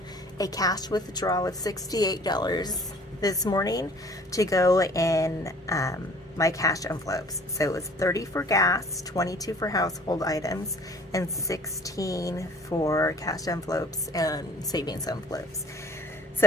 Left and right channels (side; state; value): both; normal; correlation 0.52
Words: a cash withdrawal of $68 this morning to go in my cash envelopes. So it was 30 for gas, 22 for household items, and 16 for cash envelopes and savings envelopes.